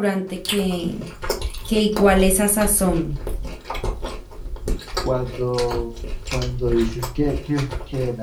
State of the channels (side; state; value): both; identical; correlation 1.00